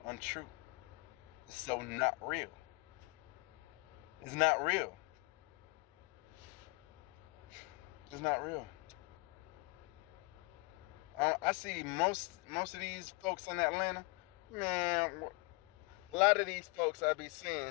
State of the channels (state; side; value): quieter; right; 28.7 dB